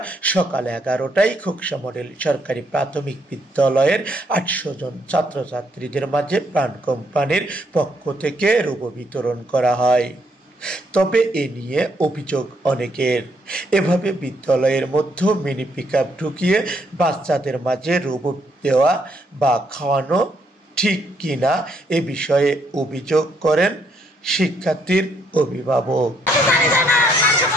সকাল 11টায় খোকসা মডেল সরকারি প্রাথমিক বিদ্যালয়ের 800 জন ছাত্রছাত্রীদের মাঝে প্রাণ কোম্পানির পক্ষ থেকে রোবো বিতরণ করা হয়। তবে এ নিয়ে অভিযোগ অনেকের। এভাবে বিদ্যালয়ের মধ্যে মিনি পিকআপ ঢুকিয়ে বাচ্চাদের মাঝে রোবো দেওয়া বা খাওয়ানো ঠিক কিনা এ বিষয়ে অভিযোগ করেন শিক্ষার্থীর অভিভাবক।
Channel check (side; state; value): both; normal; correlation 0.72